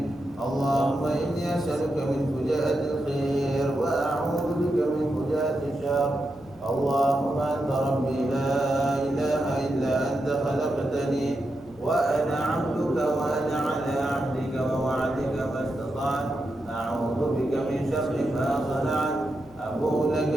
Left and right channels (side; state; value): right; noise; hum, 25 dB below the sound